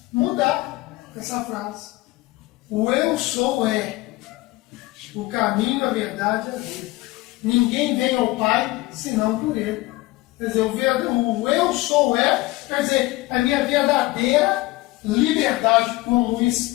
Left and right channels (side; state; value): right; quieter; 20.0 dB